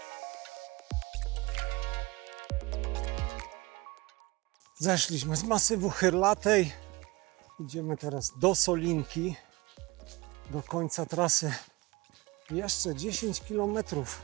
Zeszliśmy z masywu Chyrlatej. Idziemy teraz do Solinki. Do końca trasy jeszcze 10 km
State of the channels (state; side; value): quieter; left; 23.0 dB